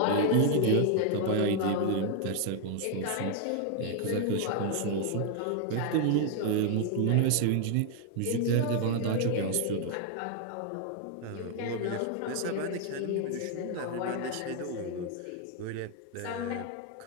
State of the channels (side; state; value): both; different; correlation 0.00